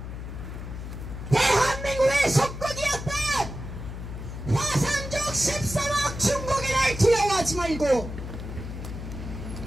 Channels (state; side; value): noise; left; hum, 8 dB below the sound